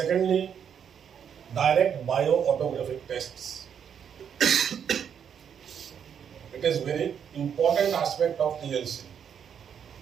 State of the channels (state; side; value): quieter; left; 8.0 dB